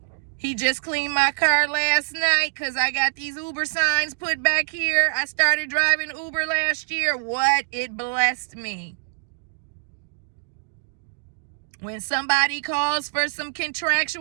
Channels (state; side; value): silent; left; digital silence